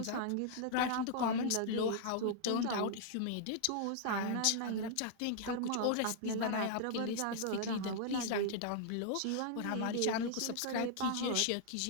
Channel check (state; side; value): different; both; correlation -0.01